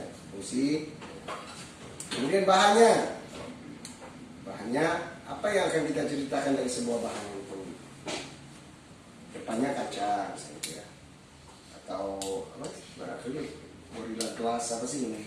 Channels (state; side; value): identical; both; correlation 1.00